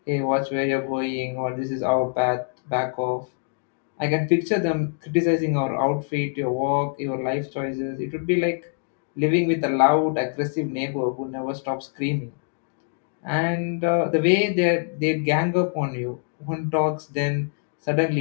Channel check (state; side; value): silent; right; digital silence